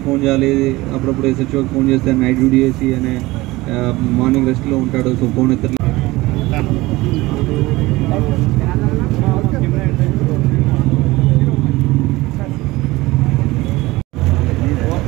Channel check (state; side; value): quieter; left; 19.9 dB